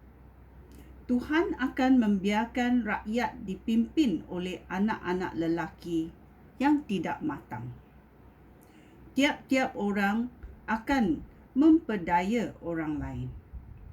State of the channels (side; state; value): both; identical; correlation 1.00